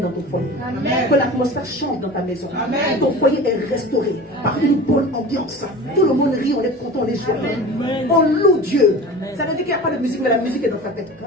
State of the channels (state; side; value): normal; both; correlation 0.36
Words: ton foyer. Amen. Que l'atmosphère change dans ta maison. Amen. Ton foyer est restauré par une bonne ambiance. Tout le monde rit, on est content, on est joyeux. On loue Dieu. Amen. Ça veut dire qu'il n'y a pas de musique, mais la musique est dans ta tête.